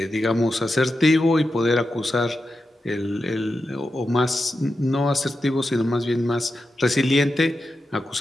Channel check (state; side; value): normal; both; correlation 0.89